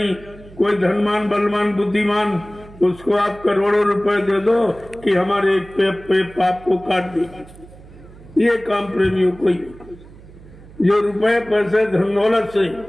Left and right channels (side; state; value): right; noise; hum, 20 dB below the sound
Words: कोई धनवान बलवान बुद्धिमान, उसको आप करोड़ों रुपए दे दो कि हमारे एक पे पाप को काट दीजिए। ये काम प्रेमियों को ही, जो रुपए पैसे धन दौलत से